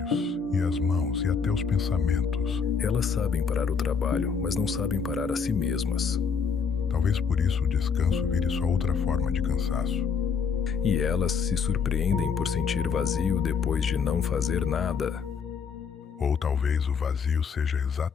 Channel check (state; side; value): quieter; right; 6.0 dB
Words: e as mãos, e até os pensamentos. Elas sabem parar o trabalho, mas não sabem parar a si mesmas. Talvez por isso o descanso vire sua outra forma de cansaço. E elas se surpreendem por sentir vazio depois de não fazer nada. Ou talvez o vazio seja